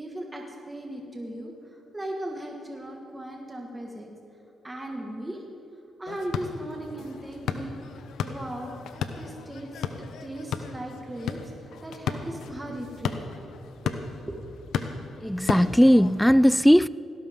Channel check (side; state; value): both; normal; correlation 0.95